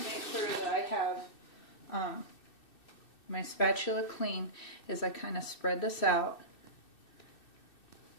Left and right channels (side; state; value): right; late; 2.6 ms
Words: to make sure that I have my spatula clean as I kind of spread this out.